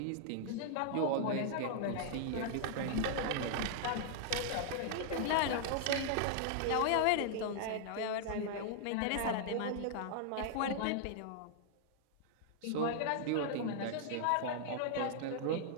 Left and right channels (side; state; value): both; different; correlation -0.01